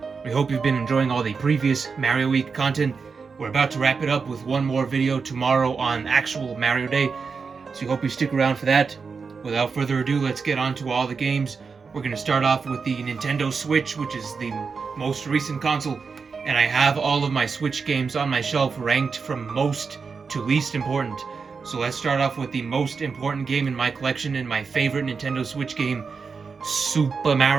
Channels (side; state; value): left; quieter; 5.2 dB